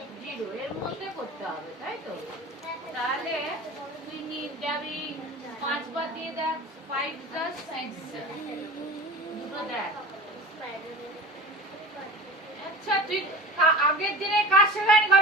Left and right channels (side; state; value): both; normal; correlation 0.36